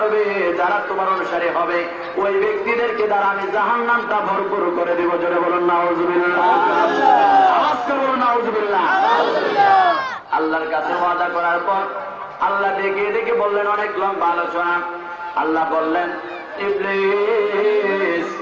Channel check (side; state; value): both; identical; correlation 1.00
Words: যারা তোমার অনুসারী হবে, ওই ব্যক্তিদেরকে দ্বারা আমি জাহান্নামটা ভরপুর করে দিব। জোরে বলুন নাউযুবিল্লাহ, আওয়াজ করে বলুন নাউযুবিল্লাহ। আল্লাহর কাছে ওয়াদা করার পর আল্লাহ ডেকে ডেকে বললেন, অনেক লম্বা আলোচনা। আল্লাহ বললেন, ইবলিস,